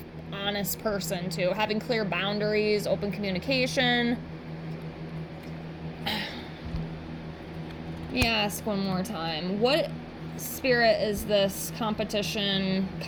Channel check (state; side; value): identical; both; correlation 1.00